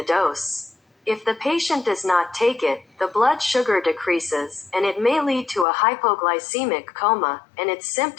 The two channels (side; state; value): right; drops out; at 5.7 s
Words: dose. If the patient does not take it, the blood sugar decreases, and it may lead to a hypoglycemic coma, and its